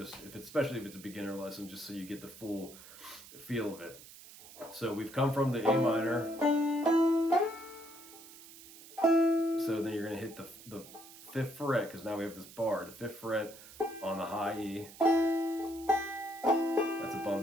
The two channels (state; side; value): noise; right; hiss, 18 dB below the sound